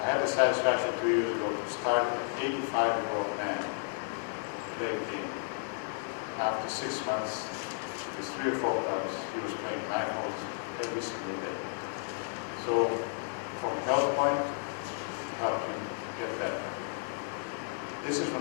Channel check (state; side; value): silent; right; 56 dB below the other